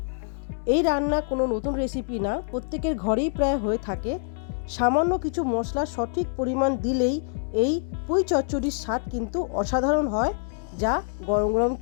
এই রান্না কোনো নতুন রেসিপি না, প্রত্যেকের ঘরেই প্রায় হয়ে থাকে। সামান্য কিছু মশলা সঠিক পরিমাণ দিলেই এই পুঁই চচ্চড়ির স্বাদ কিন্তু অসাধারণ হয়, যা গরম গরম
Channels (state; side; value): silent; right; digital silence